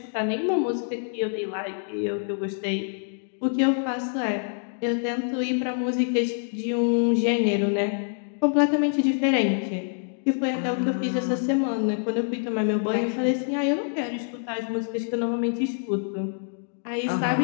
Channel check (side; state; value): right; silent; digital silence